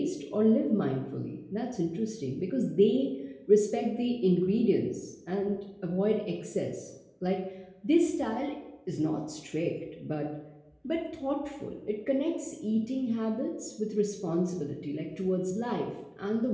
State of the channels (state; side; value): identical; both; correlation 1.00